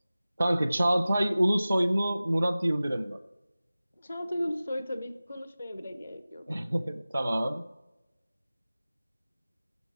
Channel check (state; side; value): inverted; both; correlation -0.97